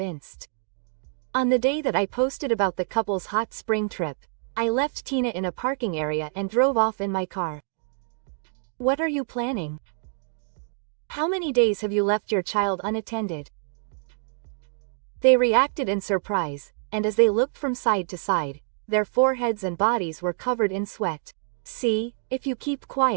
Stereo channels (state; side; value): silent; left; 61 dB below the other